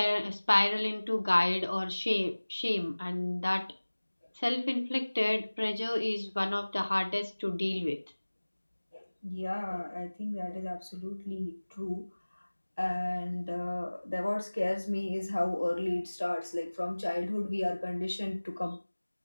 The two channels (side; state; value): both; inverted; correlation -1.00